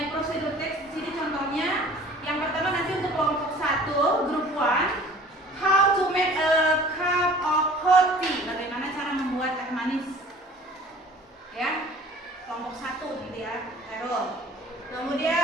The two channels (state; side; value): normal; both; correlation 0.48